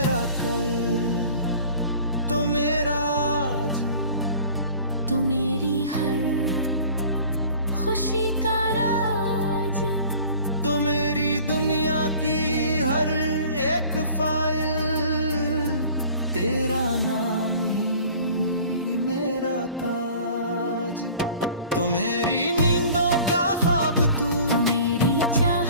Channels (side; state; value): both; inverted; correlation -0.47